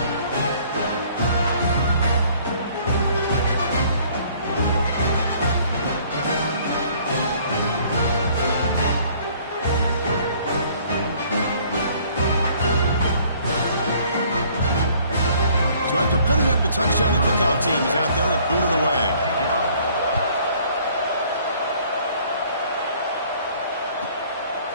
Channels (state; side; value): inverted; both; correlation -0.58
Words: Putting up the touchdown, the kickoff team is out there to boot it away.